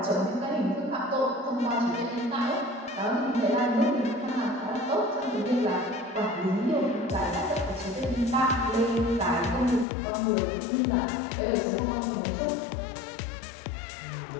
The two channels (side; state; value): right; drops out; at 9.9 s